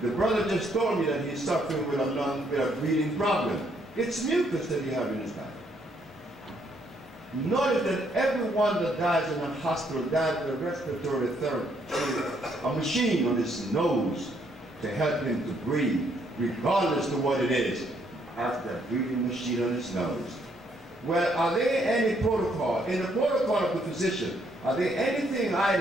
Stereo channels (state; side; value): normal; both; correlation 0.71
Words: The brother just told me that he's suffering with a breathing problem. It's mucus that he has in his body. Notice that everyone that dies in a hospital dies with a respiratory therapy, a machine on his nose to help him to breathe, regardless of what it is. Has that breathing machine on his nose. Well, are there any protocol, in the protocol of the physician, are there anything